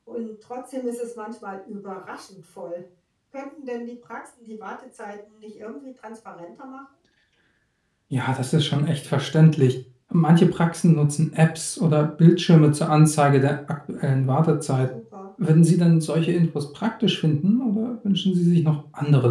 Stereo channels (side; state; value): both; identical; correlation 1.00